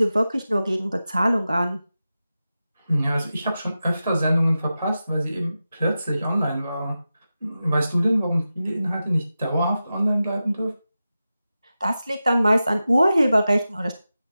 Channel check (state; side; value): inverted; both; correlation -0.93